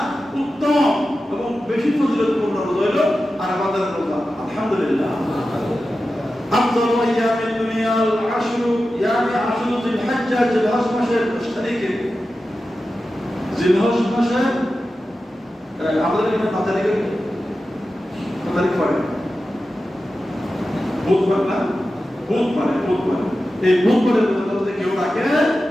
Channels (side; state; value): both; normal; correlation 0.93